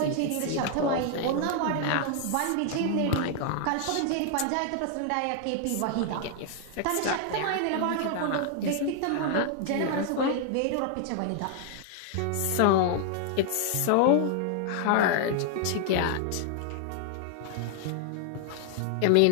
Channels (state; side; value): different; both; correlation 0.00